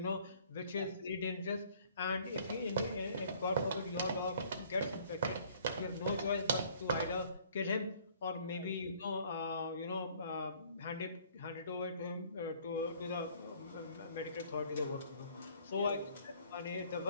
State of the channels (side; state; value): both; inverted; correlation -0.57